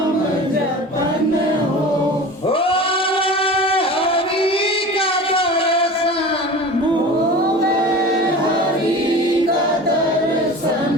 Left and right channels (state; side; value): normal; both; correlation 0.36